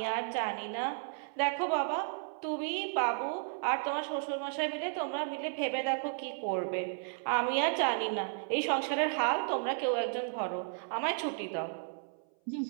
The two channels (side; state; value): left; silent; 55 dB below the other